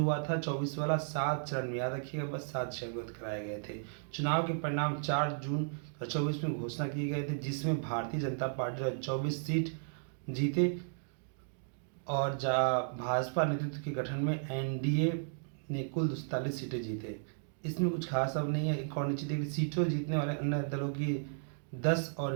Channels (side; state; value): left; silent; digital silence